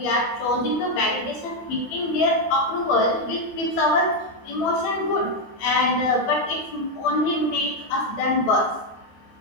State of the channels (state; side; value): late; right; 12 ms